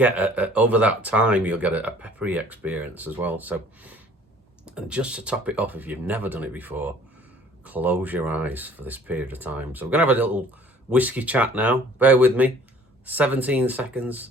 over that time, you'll get a peppery experience as well. So, and just to top it off, if you've never done it before, close your eyes for this period of time. So we're going to have a little whiskey chat now. Bear with me. 17 seconds.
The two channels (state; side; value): normal; both; correlation 0.54